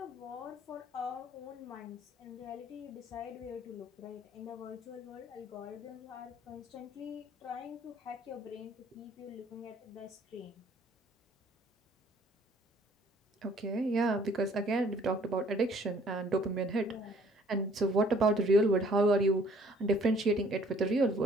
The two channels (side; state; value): both; normal; correlation 0.58